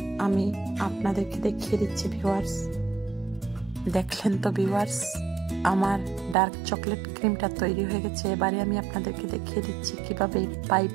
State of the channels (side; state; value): left; drops out; at 6.4 s